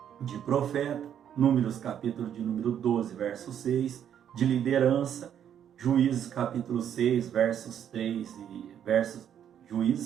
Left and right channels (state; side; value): quieter; left; 9.4 dB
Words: de profeta, Números capítulo de número 12, verso 6, de liderança, Juízes capítulo 6, versos 3 e